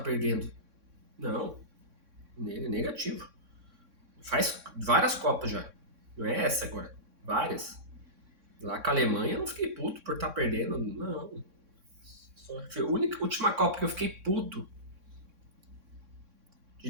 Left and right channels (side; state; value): left; late; 3.6 ms